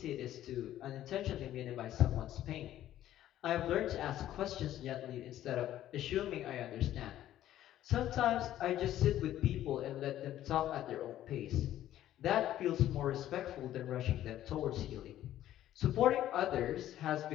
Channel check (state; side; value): quieter; right; 12.7 dB